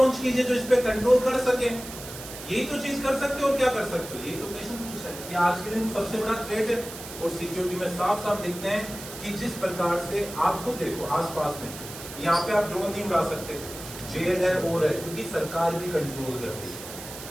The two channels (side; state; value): right; noise; hiss, 12 dB below the sound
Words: कीजिए जो इस पे कंट्रोल कर सके। यही तो चीज कर सकते हो। और क्या कर सकते हो? यही तो क्वेश्चन पूछा है कि आज के दिन सबसे बड़ा थ्रेट है। और सिक्योरिटी में साफ साफ दिखते हैं कि जिस प्रकार से आप खुद देखो आसपास में, यहाँ पे आप ड्रोन नहीं उड़ा सकते, जेल है और है, क्योंकि सरकार भी कंट्रोल कर रही है,